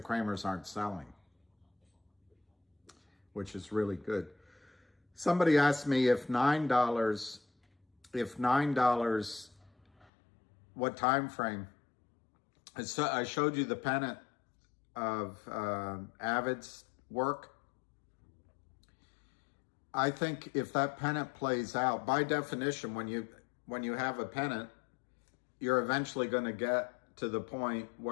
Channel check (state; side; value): drops out; right; at 10.1 s